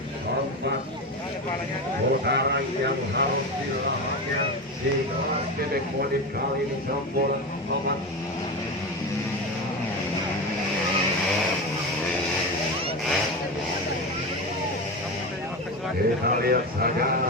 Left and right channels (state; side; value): normal; both; correlation 0.21